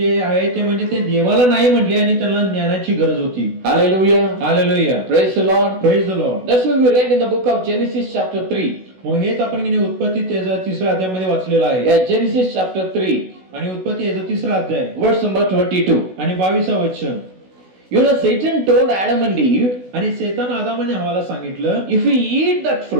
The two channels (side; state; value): left; late; 16 ms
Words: आहे ते म्हणजे ते देवाला नाही म्हटले आणि त्यांना ज्ञानाची गरज होती. Hallelujah. Hallelujah. Praise the Lord. Praise the Lord. That's what we read in the book of Genesis chapter 3. मग हेच आपण की नाही उत्पत्ती त्याचा तिसऱ्या अध्यायामध्ये वाचलेलं आहे. Yeah, Genesis chapter 3 आणि उत्पत्ती याचा तिसरा अध्याय verse number 22. आणि 22 वचन. You know, Satan told Adam and Eve, आणि शैतान आदम आणि हवाला सांगितलं, if you eat that